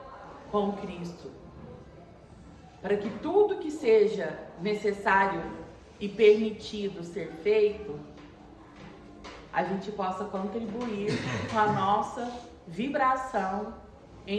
com Cristo, para que tudo que seja necessário e permitido ser feito, a gente possa contribuir com a nossa vibração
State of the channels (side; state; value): both; identical; correlation 1.00